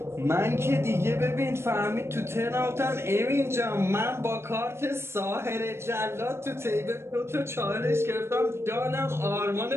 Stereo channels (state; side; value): late; left; 0.12 ms